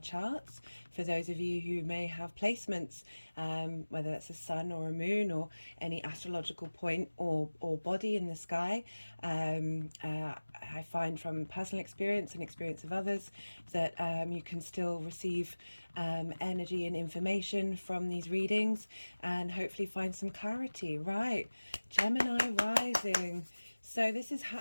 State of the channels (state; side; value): inverted; both; correlation -1.00